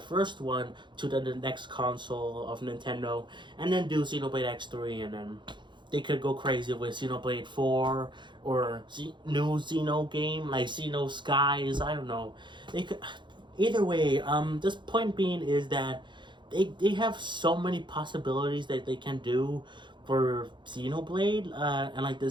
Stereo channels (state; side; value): late; left; 0.23 ms